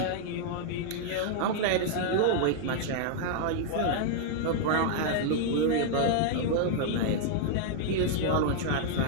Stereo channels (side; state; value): both; different; correlation -0.01